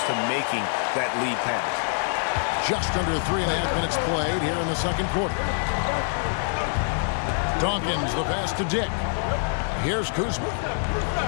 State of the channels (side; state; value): right; silent; digital silence